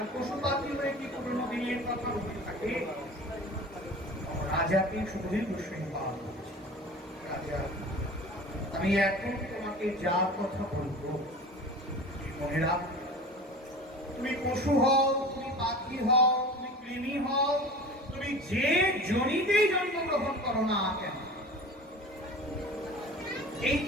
পশু পাখি হয়ে কি পুরোনো দিনের কথা মনে থাকে? রাজাকে সুখদেব গোস্বামী বাপ, রাজা আমি এখন তোমাকে যা কথা বলবো মনে রাখো। তুমি পশু হও, তুমি পাখি হও, তুমি কৃমি হও, তুমি যে জনিতেই জন্মগ্রহণ করো না কেন, এই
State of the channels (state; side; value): normal; both; correlation 0.38